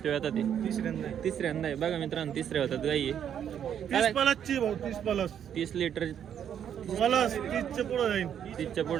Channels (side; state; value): left; quieter; 9.1 dB